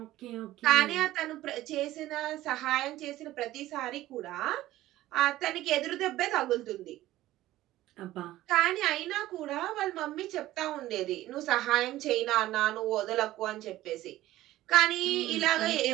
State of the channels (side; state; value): left; quieter; 15.4 dB